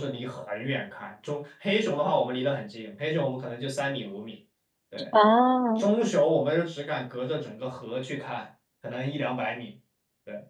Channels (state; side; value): identical; both; correlation 1.00